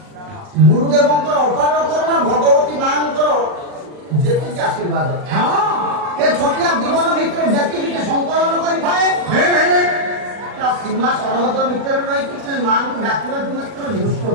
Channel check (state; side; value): late; left; 40 ms